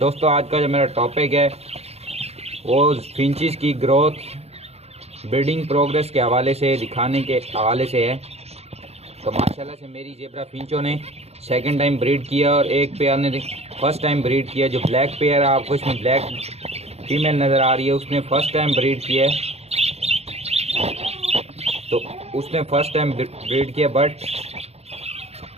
आज का जो मेरा टॉपिक है वो फिंचिस की ग्रोथ ब्रीडिंग प्रोग्रेस के हवाले से, दिखाने के हवाले से है। तो माशाल्लाह से मेरी जेब्रा फिंचों ने सेकंड टाइम ब्रीड किया और एक पेयर ने फर्स्ट टाइम ब्रीड किया। जो ब्लैक पेयर है, आपको इसमें ब्लैक फीमेल नज़र आ रही है, उसने फर्स्ट टाइम ब्रीड किया है। तो उसने फर्स्ट टाइम ब्रीड किया, बट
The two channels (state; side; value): late; left; 0.30 ms